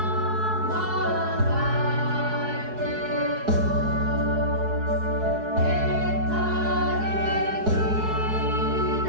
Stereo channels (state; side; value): late; left; 4.7 ms